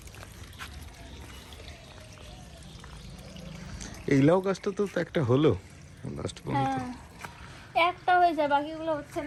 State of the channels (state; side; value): identical; both; correlation 1.00